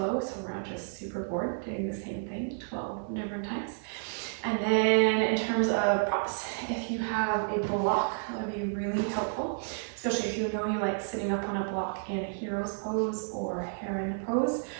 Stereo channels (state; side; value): silent; left; 55 dB below the other